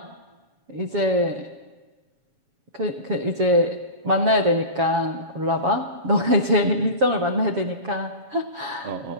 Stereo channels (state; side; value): late; left; 7.1 ms